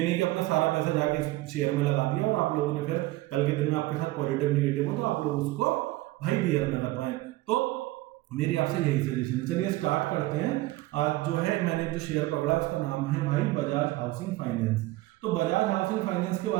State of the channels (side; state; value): left; quieter; 18.6 dB